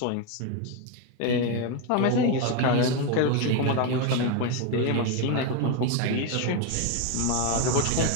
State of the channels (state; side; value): different; both; correlation 0.02